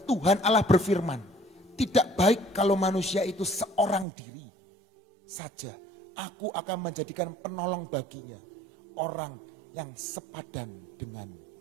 Allah berfirman, tidak baik kalau manusia itu seorang diri saja. Aku akan menjadikan penolong baginya, orang yang sepadan dengan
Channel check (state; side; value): drops out; left; at 4.0 s